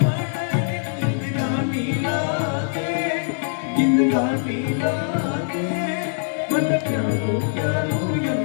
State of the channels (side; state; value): right; silent; digital silence